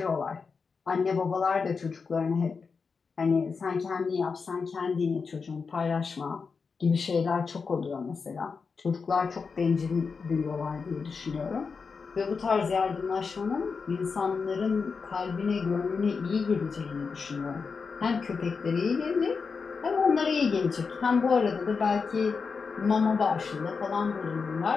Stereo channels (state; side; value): quieter; right; 5.1 dB